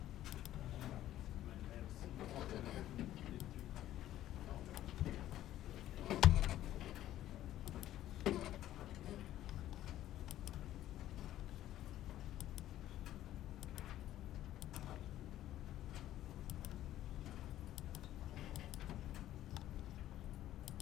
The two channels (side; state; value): right; quieter; 13.2 dB